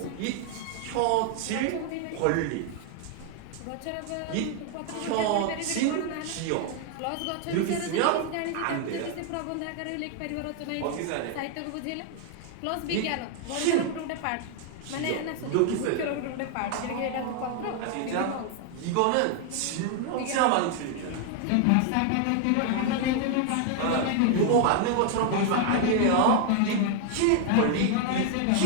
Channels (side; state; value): both; different; correlation 0.00